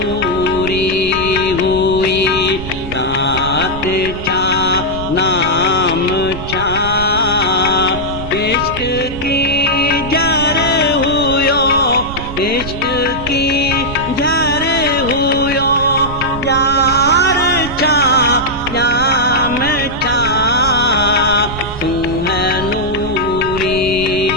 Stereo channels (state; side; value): noise; right; rumble, 10 dB below the sound